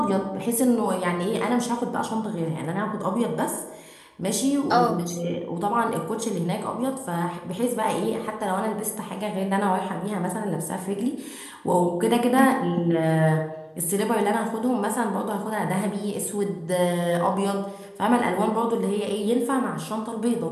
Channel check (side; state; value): both; identical; correlation 1.00